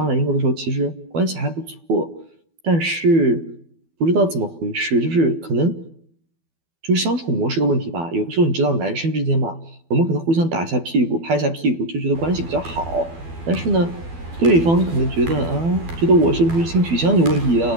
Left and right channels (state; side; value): late; left; 12 ms